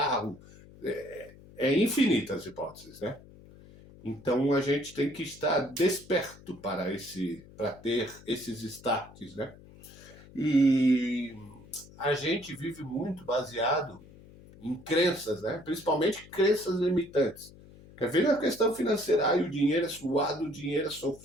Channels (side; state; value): left; noise; hum, 21 dB below the sound